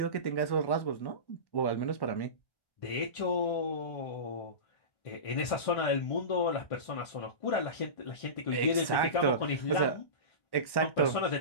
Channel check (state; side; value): late; right; 1.1 ms